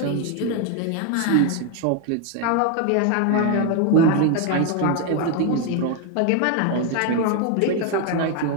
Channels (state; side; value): different; both; correlation 0.01